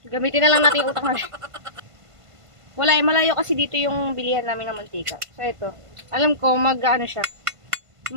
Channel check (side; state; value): left; late; 1.5 ms